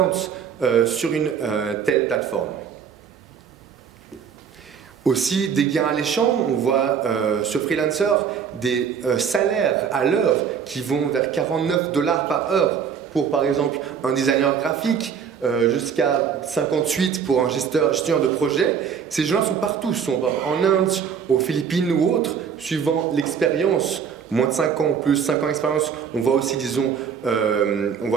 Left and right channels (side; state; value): left; quieter; 7.2 dB